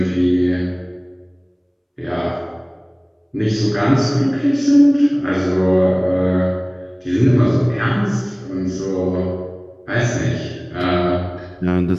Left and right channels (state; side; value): identical; both; correlation 1.00